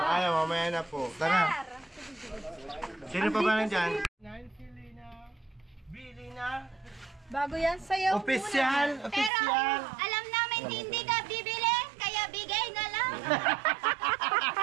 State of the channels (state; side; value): drops out; left; at 9.3 s